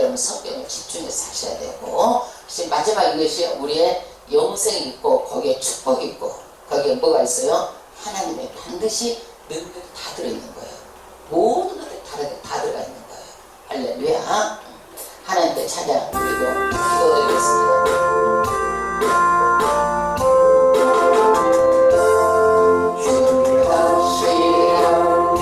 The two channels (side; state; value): both; identical; correlation 1.00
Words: 성경을 집중해서 하셔야 되고, 마지막 이것이 우리의 영생이 있고 거기에 축복이 있고 거기에 뭐가 있어요? 하나님의 반드시 능력이 다 들어있는 거예요. 모든 것들이 다 들어가 있는 거예요. 할렐루야. 하나님께 찬양 드리고 기도드리겠습니다. 주